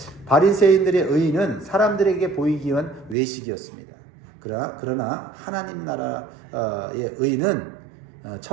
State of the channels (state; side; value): drops out; left; at 3.2 s